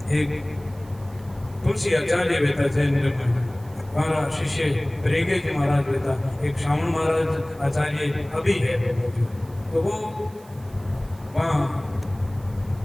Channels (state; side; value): noise; right; hiss, 26 dB below the sound